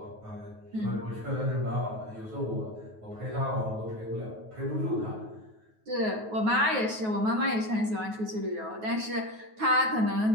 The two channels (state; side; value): late; left; 9.3 ms